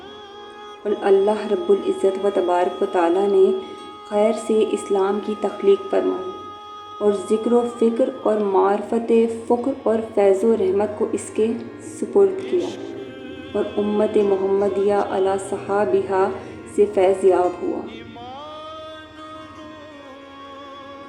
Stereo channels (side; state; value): both; identical; correlation 1.00